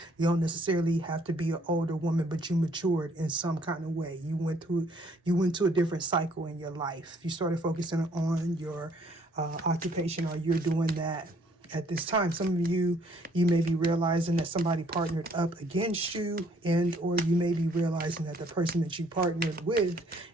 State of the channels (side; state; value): both; normal; correlation 0.63